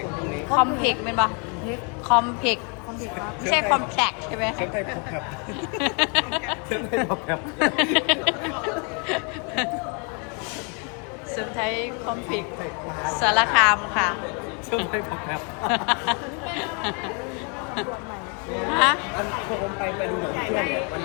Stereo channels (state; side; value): quieter; right; 36.4 dB